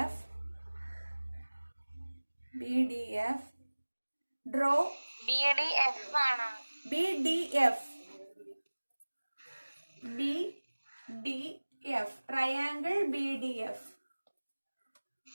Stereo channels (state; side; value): inverted; both; correlation -1.00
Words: draw BDF ആണ്. BDF triangle BDF